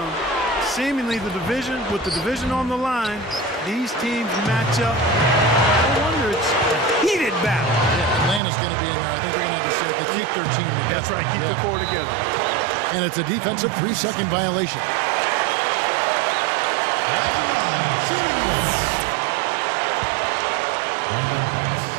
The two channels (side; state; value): left; drops out; at 8.4 s